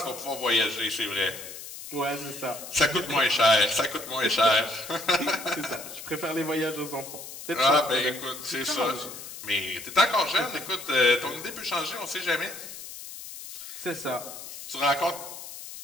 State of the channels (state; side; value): noise; left; hiss, 12 dB below the sound